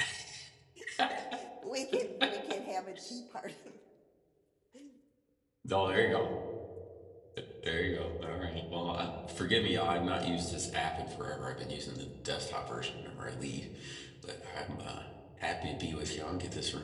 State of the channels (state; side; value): identical; both; correlation 1.00